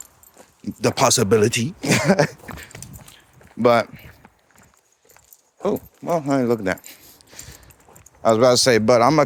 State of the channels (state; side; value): identical; both; correlation 1.00